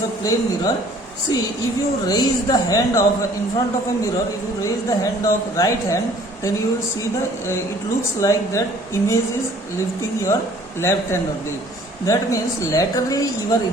of plane mirror. See, if you raise the hand of in front of a mirror, if you raise the hand of right hand, then you will see the it looks like that image is lifting your left hand only. That means laterally you are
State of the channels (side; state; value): both; normal; correlation 0.55